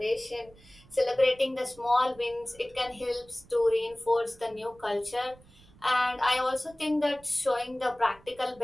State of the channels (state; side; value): noise; right; rumble, 25 dB below the sound